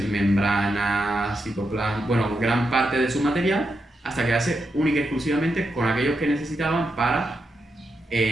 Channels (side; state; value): both; normal; correlation 0.85